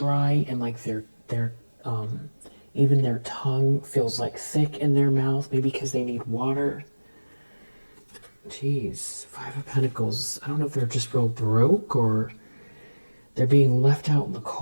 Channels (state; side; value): inverted; both; correlation -1.00